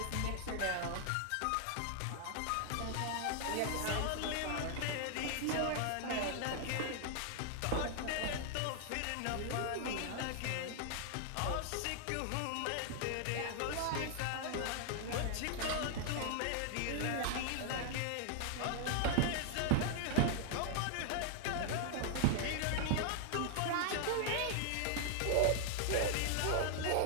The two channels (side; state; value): both; different; correlation 0.00